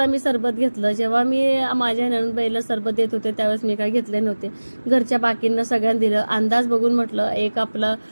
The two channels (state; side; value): inverted; both; correlation -1.00